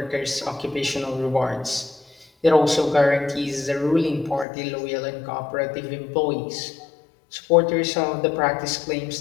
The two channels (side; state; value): right; drops out; at 4.5 s